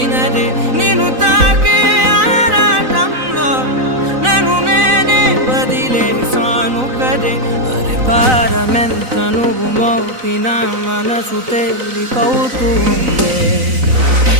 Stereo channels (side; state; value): left; late; 4.0 ms